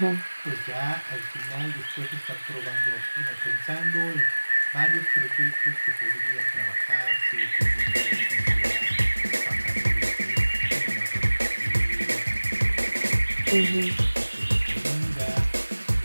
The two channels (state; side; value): inverted; both; correlation -1.00